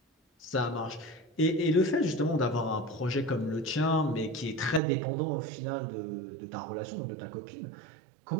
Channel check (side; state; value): left; drops out; at 4.8 s